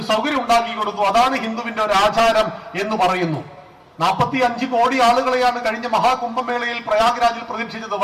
സൗകര്യം ഉണ്ടാക്കി കൊടുത്തു. അതാണ് ഹിന്ദുവിന്റെ ഒരു ആചാരം എന്ന് പറയുന്നു. 45 കോടി ആളുകളെയാണ് കഴിഞ്ഞ മഹാകുംഭമേളയിൽ പ്രയാഗ്രാജിൽ പ്രതീക്ഷിച്ചത്.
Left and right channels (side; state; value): both; identical; correlation 1.00